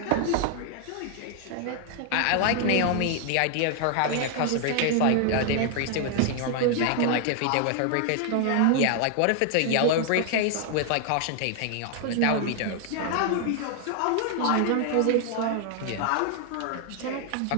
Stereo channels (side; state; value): both; different; correlation 0.00